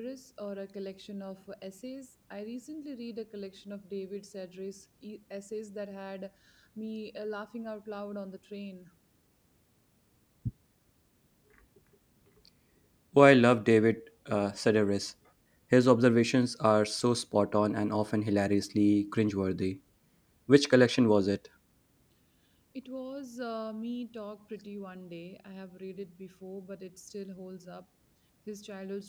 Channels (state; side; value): identical; both; correlation 1.00